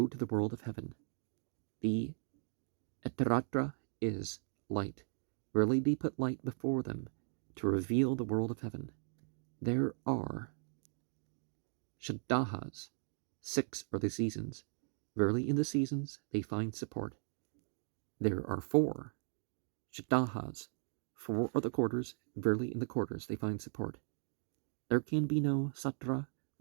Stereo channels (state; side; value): silent; left; digital silence